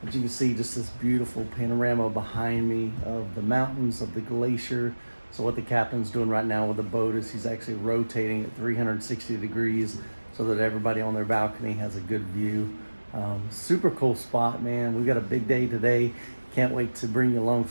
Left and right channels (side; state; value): both; inverted; correlation -1.00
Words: But you can see just this beautiful panorama behind me of the mountains, of the glacier. So what the captain's doing right now with the boat is he's actually rotating at 360 degrees so that everybody on their balcony has a good view. Super cool spot, man. We've got a big day today. Can't wait to bring you along